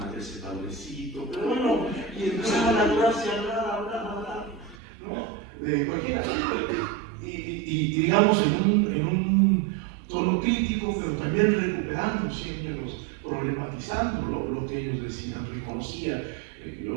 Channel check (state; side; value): drops out; left; at 4.8 s